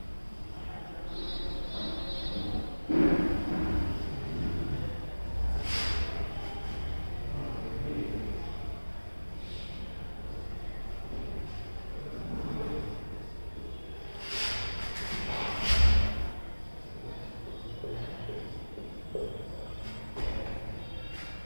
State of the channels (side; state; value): both; inverted; correlation -1.00